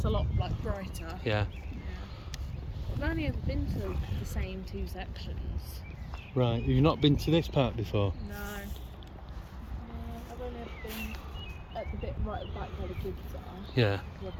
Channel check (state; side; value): identical; both; correlation 1.00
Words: a lot like brighter. Yeah. I've only ever been to the same two sections. Right. Have you not been to this part before? No. I've only ever been at the bit right at the back where the kids are. Yeah. Because I've